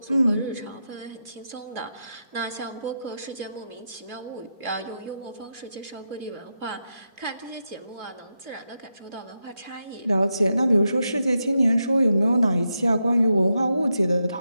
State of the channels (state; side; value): inverted; both; correlation -0.86